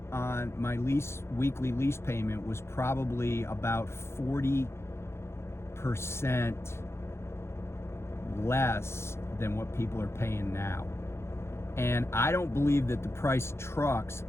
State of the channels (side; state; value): right; late; 0.13 ms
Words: on my weekly lease payment was probably about 40% less than what people are paying now. And I don't believe that the price of trucks,